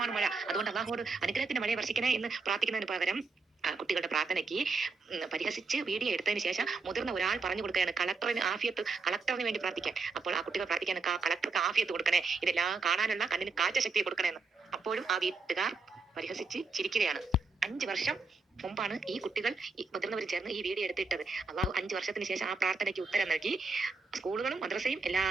മഴ. അതുകൊണ്ട് അള്ളാഹുവോട് അനുഗ്രഹത്തിന്റെ മഴയെ വർഷിക്കണേ എന്ന് പ്രാർത്ഥിക്കുന്നതിന് പകരം കുട്ടികളുടെ പ്രാർത്ഥനയ്ക്ക് പരിഹസിച്ച് വീഡിയോ എടുത്തതിന് ശേഷം മുതിർന്ന ഒരാൾ പറഞ്ഞു കൊടുക്കുകയാണ് കളക്ടറിന് വേണ്ടി പ്രാർത്ഥിക്കാൻ. അപ്പോൾ ആ കുട്ടികൾ പ്രാർത്ഥിക്കാൻ കളക്ടർക്ക് ആഫിയത്ത് കൊടുക്കണേ, ഇതെല്ലാം കാണാനുള്ള കണ്ണിന് കാഴ്ച ശക്തിയെ കൊടുക്കണേന്ന്. അപ്പോഴും ആ വീട്ടുകാർ പരിഹസിച്ച് ചിരിക്കുകയാണ്. 5 വർഷം മുമ്പാണ് ഈ കുട്ടികൾ മുതിർന്നവർ ചേർന്ന് ഈ വീഡിയോ എടുത്തിട്ടത്. അള്ളാഹു 5 വർഷത്തിന് ശേഷം ആ പ്രാർത്ഥനയ്ക്ക് ഉത്തരം നൽകി. സ്കൂളുകളും മദ്രസയും എല്ലാം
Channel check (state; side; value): quieter; left; 4.1 dB